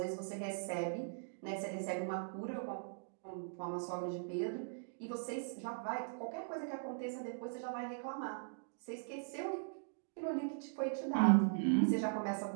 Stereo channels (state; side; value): silent; left; digital silence